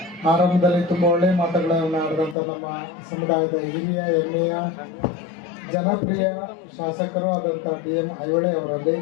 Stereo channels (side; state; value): right; drops out; at 2.4 s